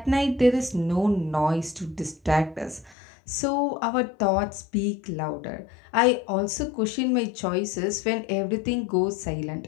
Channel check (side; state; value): right; drops out; at 3.0 s